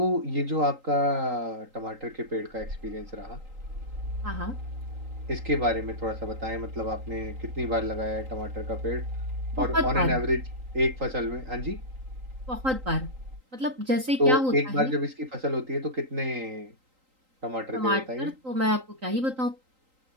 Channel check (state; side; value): late; left; 3.8 ms